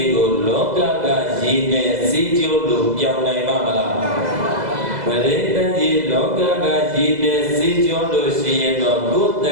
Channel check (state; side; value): late; left; 2.0 ms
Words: ကိုလောကကရည်နဲ့စီးကျိုးလို့ပြောင်းနိုင်မှာမလားပရိတ္တကြီးလောကကရည်နဲ့စီးကျိုးလို့ရှိရင်တော့ကိုယ်တ